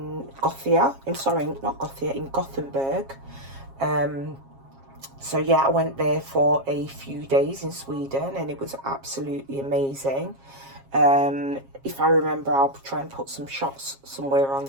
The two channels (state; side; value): late; left; 7.4 ms